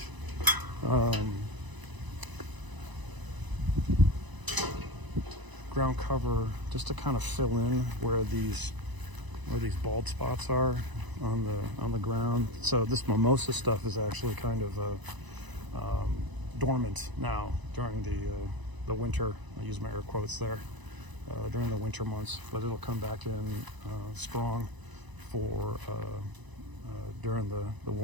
Ground cover just to kind of fill in where these bald spots are on the ground. So this mimosa stuff is actually kind of dormant now during the winter. I use my air quotes there. During the winter months, but it'll come back in strong for during the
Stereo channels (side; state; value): left; late; 1.0 ms